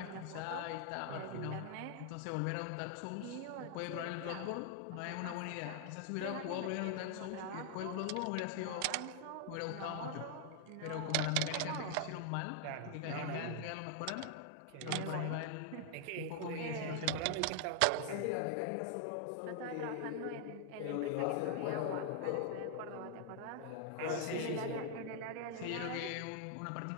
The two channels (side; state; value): both; different; correlation 0.00